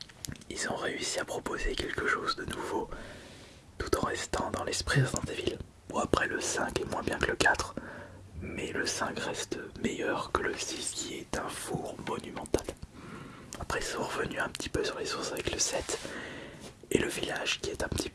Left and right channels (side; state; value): both; identical; correlation 1.00